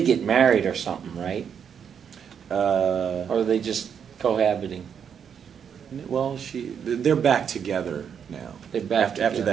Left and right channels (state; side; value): quieter; left; 7.6 dB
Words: get married or something, right? Or are they just cohabiting? Well, they're back together now. They're back after